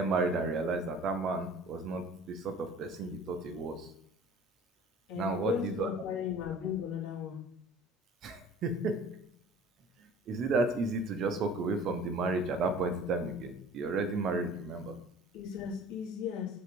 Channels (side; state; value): both; normal; correlation 0.46